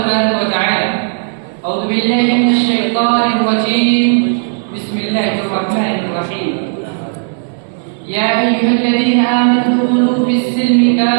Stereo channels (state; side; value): silent; left; digital silence